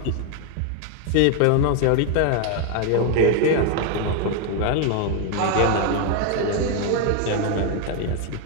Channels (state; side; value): different; both; correlation 0.01